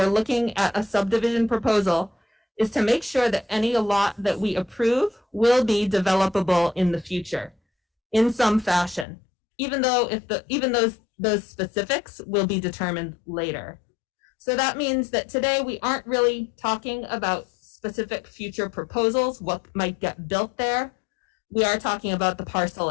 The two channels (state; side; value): drops out; right; at 9.1 s